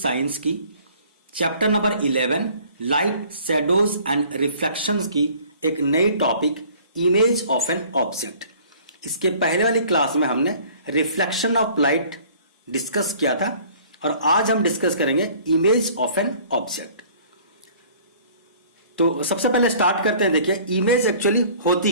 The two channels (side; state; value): both; inverted; correlation -0.53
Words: की chapter number 11 light, shadows and reflections की एक नई topic image of an object. इसके पहले वाली क्लास में हमने रिफ्लेक्शन ऑफ लाइट डिस्कस किया था और आज हम डिस्कस करेंगे इमेज ऑफ एन ऑब्जेक्ट। तो सबसे पहले स्टार्ट करते हैं। देखिए, इमेज एक्चुअली होती